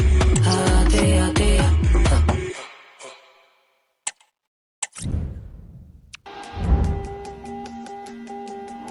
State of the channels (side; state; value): both; identical; correlation 1.00